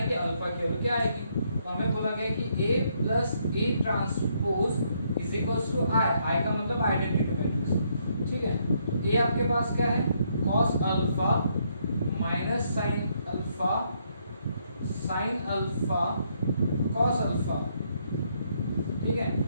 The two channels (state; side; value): inverted; both; correlation -0.73